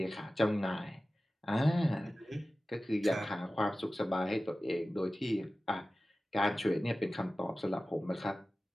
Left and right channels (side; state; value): both; normal; correlation 0.95